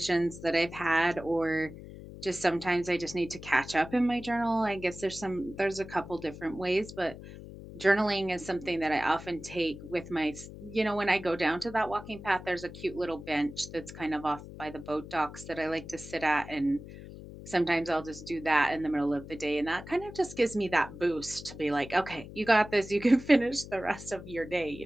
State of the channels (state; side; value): noise; left; hum, 14 dB below the sound